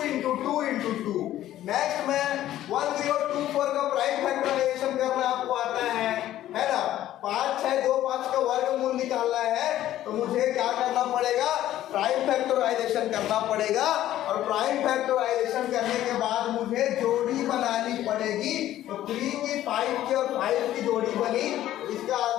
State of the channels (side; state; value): right; quieter; 13.2 dB